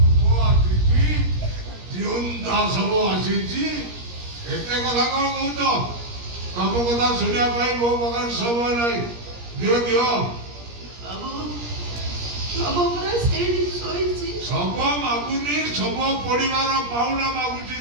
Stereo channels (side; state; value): left; late; 17 ms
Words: ଜିଅନ୍ତା ଶବ ଆସିଛି, ଏତେ କଥା କଣ କହୁଛ? ତମ କଥା ଶୁଣିବା ପାଇଁ ମୋ ପାଖରେ ସମୟ ନାହିଁ। ଦିଅ ଦିଅ। ବାବୁ, ଶବ ପୁରା ସେଇଠି ଶୋଇଛି। ଶବ ମାଗୁନି, ଶବ ପଡ଼ିବାର ପାଉଣା ମାଗୁଛି।